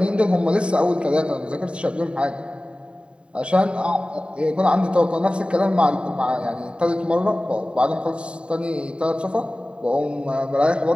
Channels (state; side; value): late; left; 0.055 ms